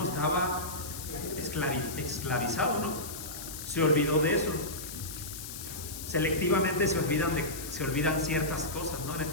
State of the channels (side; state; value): left; noise; hiss, 9 dB below the sound